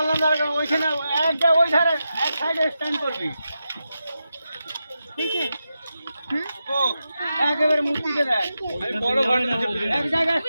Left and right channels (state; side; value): inverted; both; correlation -0.89